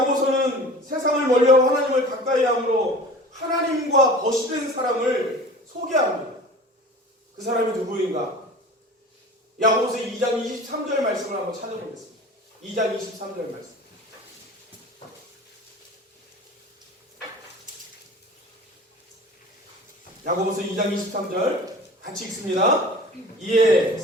세상을 멀리하고 하나님을 가까이 함으로 하나님과 벗이 된 사람을 소개합니다. 그 사람이 누구인가? 야고보서 2장 23절 말씀을 한번 찾아보겠습니다. 2장 23절 말씀. 야고보서 2장 23절 같이 읽습니다. 이에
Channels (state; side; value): normal; both; correlation 0.40